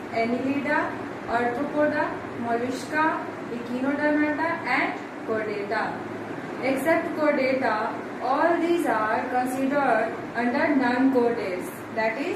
Annelida, Arthropoda, Mollusca, Echinodermata and Chordata. Except Chordata, all these are considered under non-chordates, that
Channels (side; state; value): both; identical; correlation 1.00